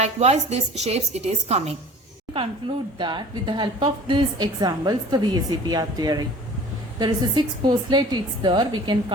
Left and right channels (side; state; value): both; normal; correlation 0.45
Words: these shapes it is coming. Conclude that with the help of these examples the VSEPR theory. There is a 6 postulate it's there. We can